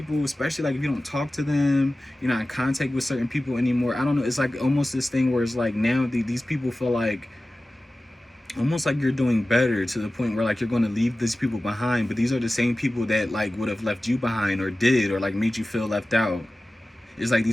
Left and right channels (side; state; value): both; normal; correlation 0.96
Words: especially like if you don't talk to them, you're not in contact with certain people anymore. I don't know, it's like almost this thing where it's like now these people feel like almost like you're doing better to the point where like you're going to leave these people behind, but these are the same people that like would have left you behind or did, or like made you feel left out. It's like